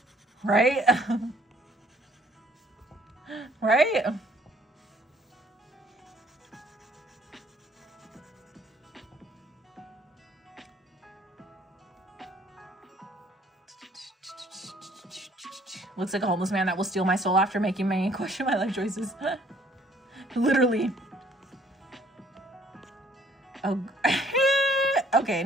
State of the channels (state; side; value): normal; both; correlation 0.61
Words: Right? Right? Looks like a homeless man that will steal my soul after making me question my life choices. Literally. Oh. Okay,